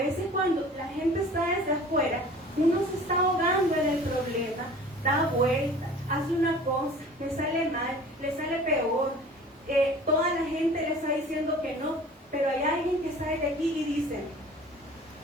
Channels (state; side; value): normal; both; correlation 0.44